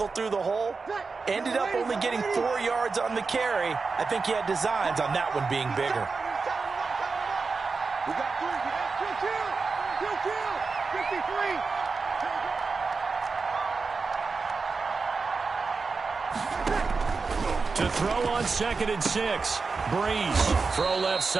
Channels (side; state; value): left; quieter; 4.5 dB